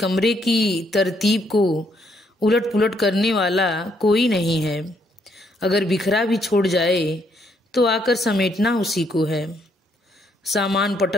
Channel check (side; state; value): both; normal; correlation 0.72